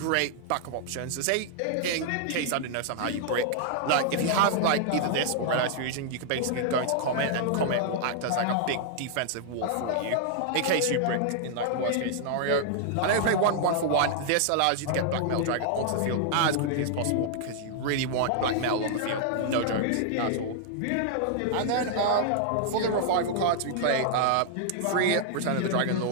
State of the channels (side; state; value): both; different; correlation -0.01